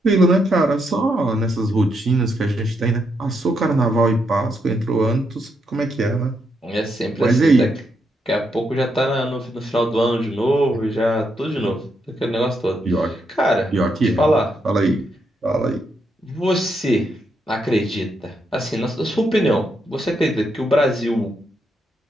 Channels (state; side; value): normal; both; correlation 0.79